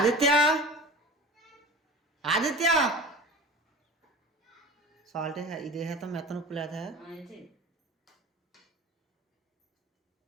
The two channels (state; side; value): normal; both; correlation 0.36